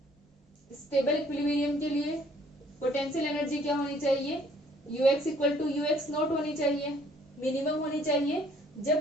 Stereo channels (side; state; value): both; normal; correlation 0.61